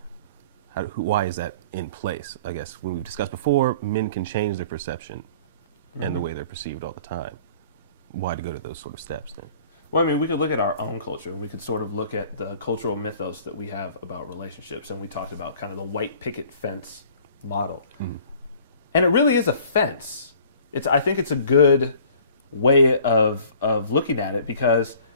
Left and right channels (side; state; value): both; inverted; correlation -0.50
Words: Why is that in place? I guess when we've discussed before, men can change their perception and the way they're perceived all the time. Why to go to those sort of steps then? Well, I mean, we could look at our own culture, and we could sort of look at the cultural mythos that we have about relationships, and we talked about kind of the white picket fence model. And it really is a fence. I think it's a good way of looking at it because,